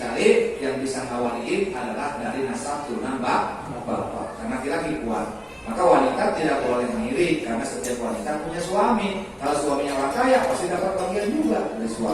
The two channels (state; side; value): identical; both; correlation 1.00